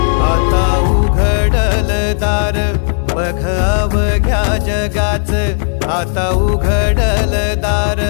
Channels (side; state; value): right; silent; 61 dB below the other